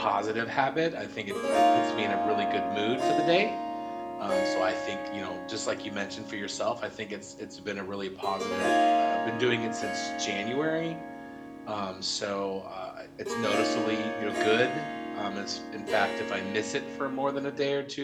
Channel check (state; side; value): identical; both; correlation 1.00